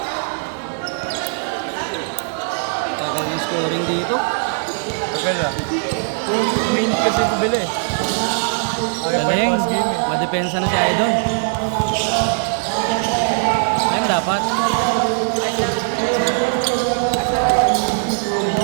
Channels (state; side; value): silent; left; digital silence